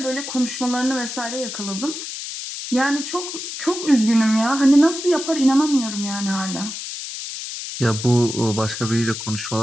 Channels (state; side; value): noise; left; hiss, 7 dB below the sound